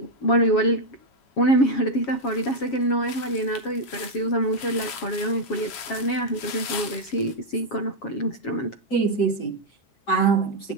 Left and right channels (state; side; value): late; right; 7.8 ms